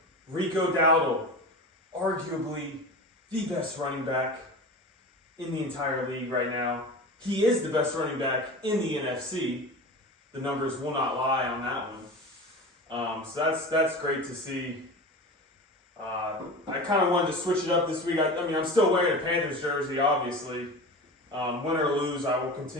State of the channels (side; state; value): both; normal; correlation 0.31